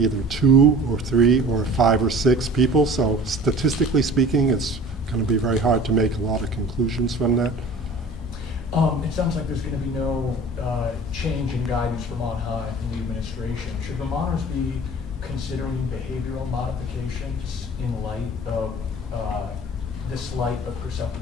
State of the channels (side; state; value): both; normal; correlation 0.43